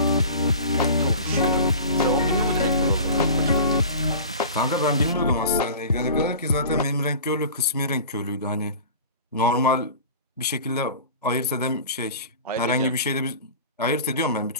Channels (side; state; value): both; inverted; correlation -0.38